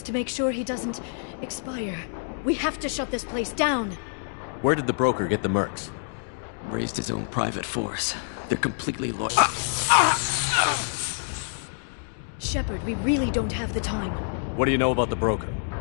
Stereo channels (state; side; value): silent; right; digital silence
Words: to make sure he doesn't expire. We have to shut this place down. Where did the broker get the mercs? Raised his own private force. They're completely loyal. Shepard, we really don't have the time. What do you know about the broker?